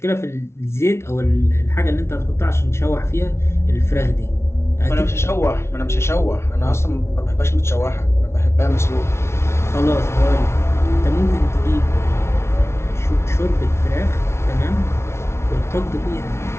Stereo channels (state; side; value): late; right; 0.13 ms